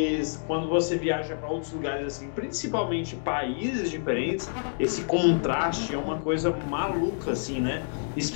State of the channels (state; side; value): silent; right; digital silence